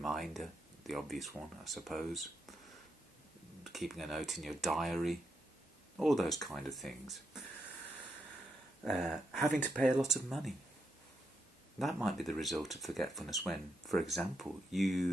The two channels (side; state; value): both; normal; correlation 0.82